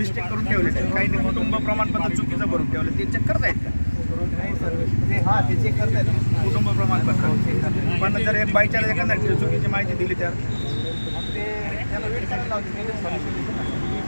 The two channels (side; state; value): both; inverted; correlation -1.00